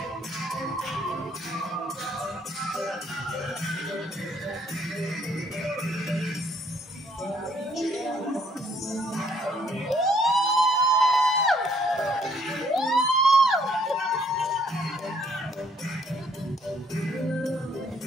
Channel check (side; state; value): both; normal; correlation 0.66